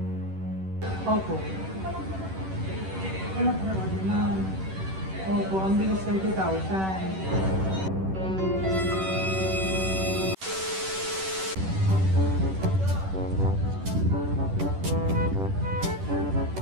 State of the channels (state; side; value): late; left; 10 ms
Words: Opo. Wala po na order na. Opo, ang bilis 30,000.